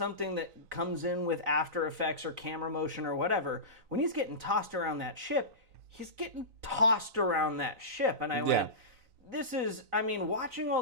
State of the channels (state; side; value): late; left; 3.9 ms